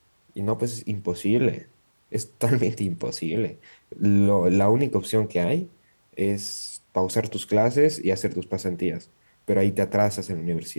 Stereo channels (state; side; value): inverted; both; correlation -1.00